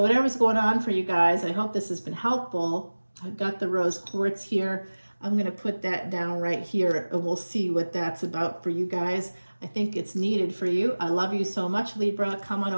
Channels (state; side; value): inverted; both; correlation -1.00